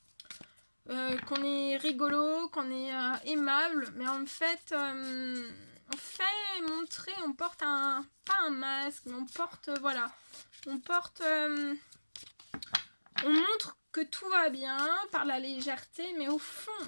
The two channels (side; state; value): both; inverted; correlation -1.00